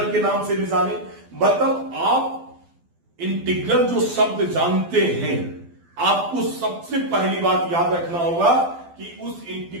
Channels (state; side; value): late; left; 12 ms